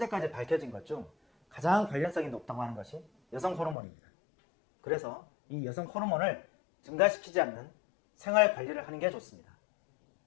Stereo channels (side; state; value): right; drops out; at 3.8 s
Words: 밝혀진 것 중 가장 관련성이 높다고 하는 것이 여성 호르몬입니다. 그래서 이 여성 호르몬을 증가시키지 않는 생활 관리를 하는 게 좋습니다.